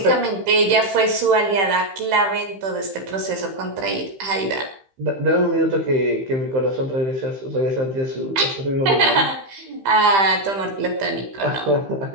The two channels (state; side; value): late; left; 15 ms